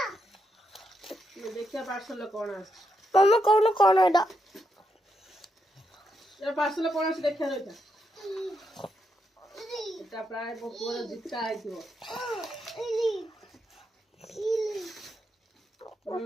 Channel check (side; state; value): both; normal; correlation 0.81